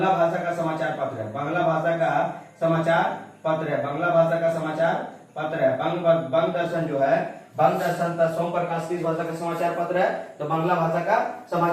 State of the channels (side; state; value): both; identical; correlation 1.00